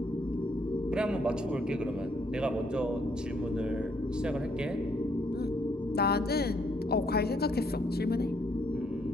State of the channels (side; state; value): both; normal; correlation 0.70